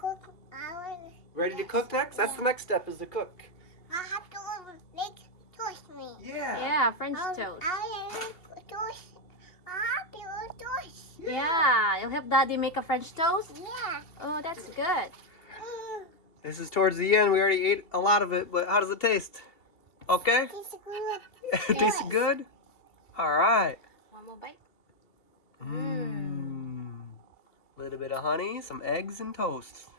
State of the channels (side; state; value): right; late; 2.7 ms